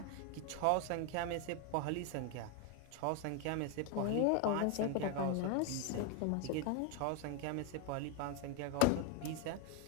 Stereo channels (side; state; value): both; different; correlation 0.01